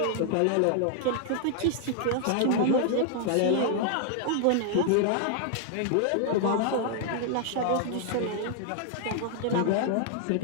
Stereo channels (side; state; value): both; different; correlation 0.00